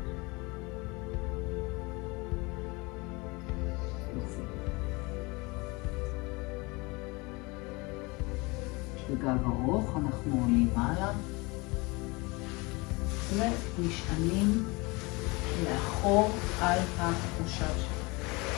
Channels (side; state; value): right; quieter; 25.8 dB